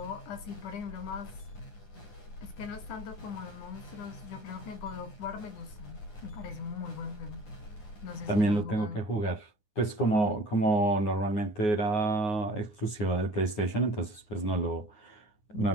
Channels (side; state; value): right; late; 9.5 ms